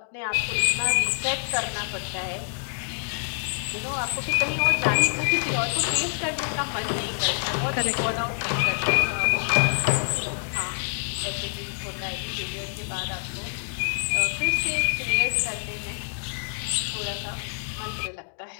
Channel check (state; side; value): silent; right; digital silence